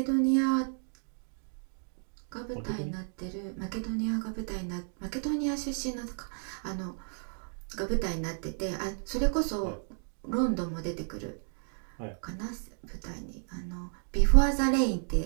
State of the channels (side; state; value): left; silent; digital silence